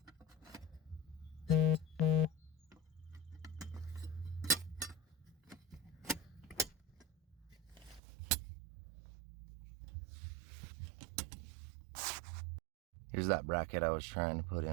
Here's that bracket I was trying to put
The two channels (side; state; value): left; drops out; at 8.0 s